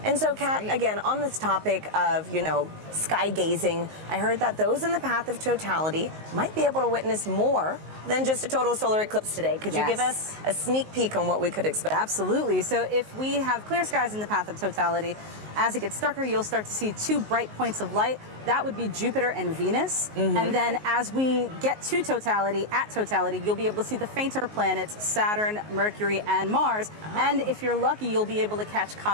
And so, Kat, again, on this topic of, you know, sky gazing, I heard that those in the path of totality might be able to witness more than just a total solar eclipse today. Could you give us a sneak peek on what we could expect? Absolutely. So if we have clear skies in the path of totality, as it gets darker, you'll start to see two bright points of light. That would be Jupiter and Venus. And then as we get to totality, at totality, you'll be able to see the fainter planets, Saturn, Mercury, and Mars. And if you're lucky, you'll be able to catch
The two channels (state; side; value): late; left; 19 ms